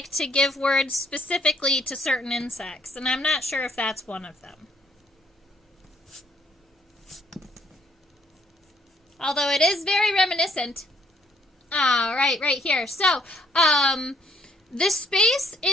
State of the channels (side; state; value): both; normal; correlation 0.67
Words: to give words specifically to certain insects, and I'm not sure if that's one of them. Although it is very reminiscent. Right here. So, the space